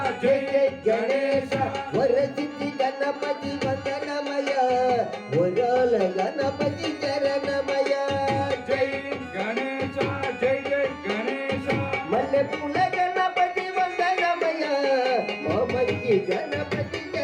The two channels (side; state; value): both; identical; correlation 1.00